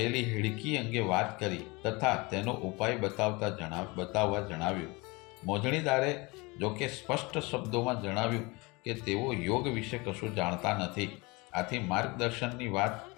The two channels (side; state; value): right; quieter; 25.5 dB